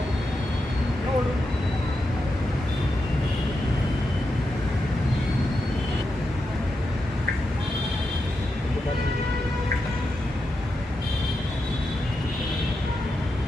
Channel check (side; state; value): both; normal; correlation 0.87